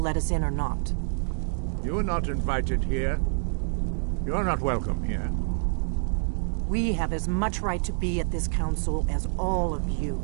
let us in or not? You are not invited here. You are not welcome here. We have as much right to be at this council as all of you.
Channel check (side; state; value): left; silent; digital silence